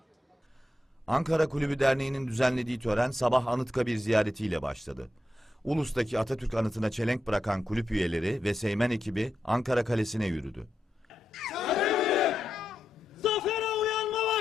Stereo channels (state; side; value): normal; both; correlation 0.86